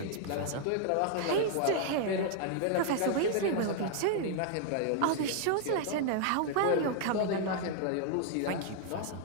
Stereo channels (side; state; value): both; different; correlation -0.01